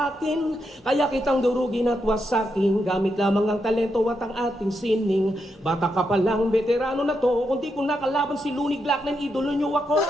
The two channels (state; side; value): normal; both; correlation 0.83